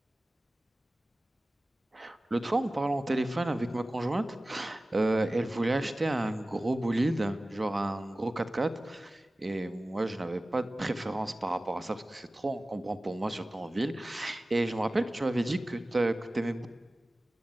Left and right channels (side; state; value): both; normal; correlation 0.97